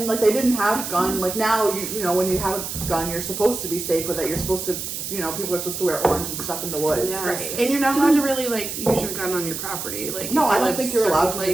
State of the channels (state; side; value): noise; right; hiss, 6 dB below the sound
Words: like they didn't have gun. Like now, you know, when you have a gun, you're supposed to be safe with it. You're supposed to, you know, people are supposed to wear orange and stuff in the woods. Yes. Right. And you're not allowed to really like use your gun on your property. Like No, if I you don't live think you're certain allowed to